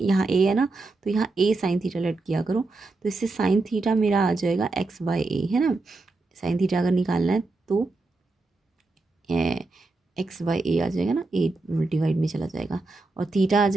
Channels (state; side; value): quieter; left; 3.4 dB